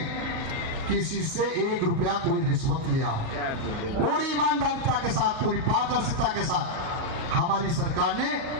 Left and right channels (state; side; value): late; left; 38 ms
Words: किसी से 1 रुपया कोई रिश्वत लिया। पूरी ईमानदारिता के साथ, पूरी पारदर्शिता के साथ हमारी सरकार ने